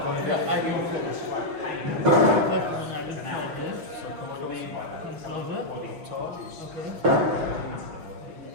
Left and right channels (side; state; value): left; late; 6.4 ms